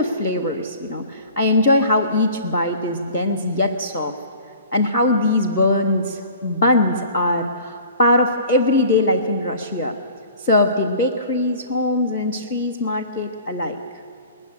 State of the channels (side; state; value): both; inverted; correlation -0.46